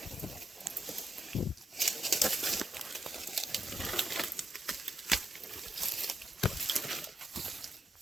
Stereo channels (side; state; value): both; normal; correlation 0.83